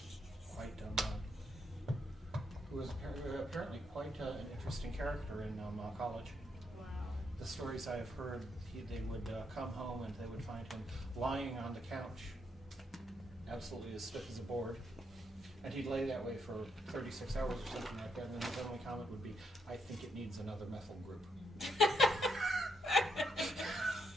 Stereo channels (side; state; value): both; normal; correlation 0.77